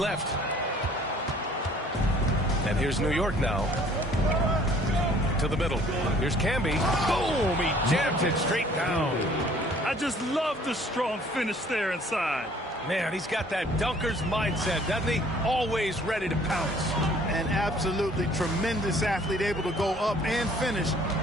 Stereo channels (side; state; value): both; normal; correlation 0.56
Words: And here's New York now. To the middle. Here's Camby. Boom! He jammed it straight down. I just love the strong finish there inside. Man, he's got that dunker's mindset, doesn't he? Always ready to pounce. An absolutely tremendous athlete, able to go up and finish